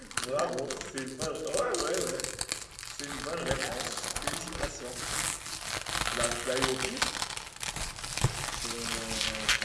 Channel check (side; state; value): both; identical; correlation 1.00